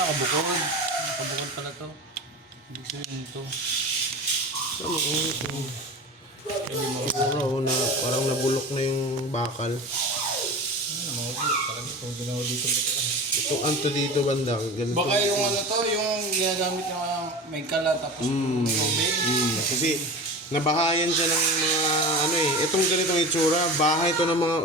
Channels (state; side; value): normal; both; correlation 0.31